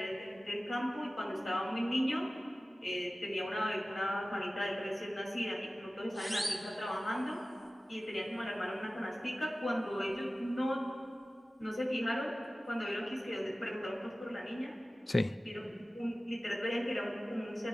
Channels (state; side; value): normal; both; correlation 0.97